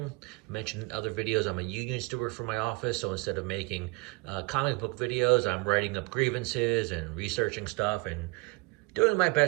Mentioned in other videos I'm a union steward for my office, so instead of making comic book videos, I'm writing up grievances and researching stuff and doing my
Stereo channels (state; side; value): quieter; left; 27.0 dB